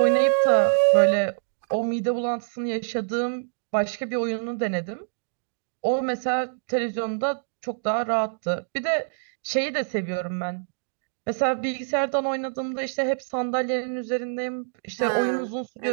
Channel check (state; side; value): silent; left; digital silence